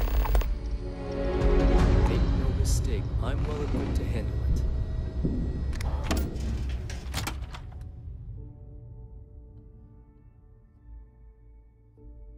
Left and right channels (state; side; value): identical; both; correlation 1.00